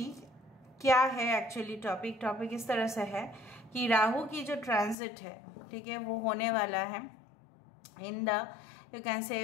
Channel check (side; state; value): right; drops out; at 5.0 s